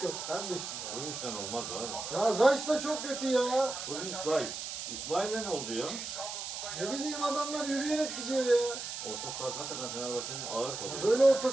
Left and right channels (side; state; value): right; noise; hiss, 6 dB below the sound